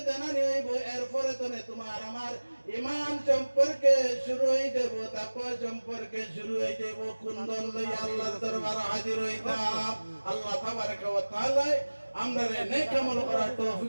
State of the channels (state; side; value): inverted; both; correlation -1.00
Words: জানানি হইব, এরপরে তো তোমার আমার ঈমান সম্পর্কে শুরু হয়ে যাব, তাকওয়া সম্পর্কে শুরু হয়ে যাব। কোন দল লইয়া আল্লাহর দরবারে হাজির হইতাম। আল্লাহ তাবারক ওয়া তাআলা আমরা নেক আমল করার